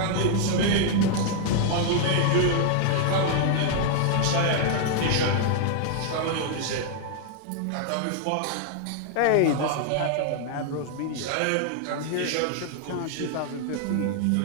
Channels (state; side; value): different; both; correlation 0.00